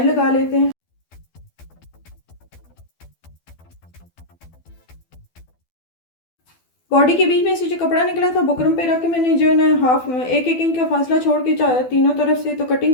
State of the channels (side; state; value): right; late; 12 ms